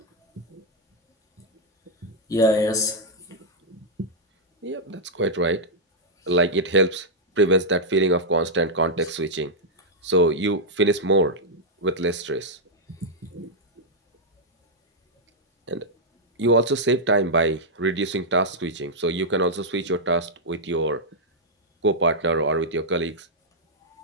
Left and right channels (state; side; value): normal; both; correlation -0.05